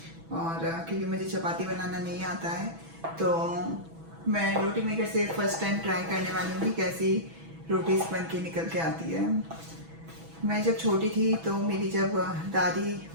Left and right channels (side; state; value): left; late; 6.1 ms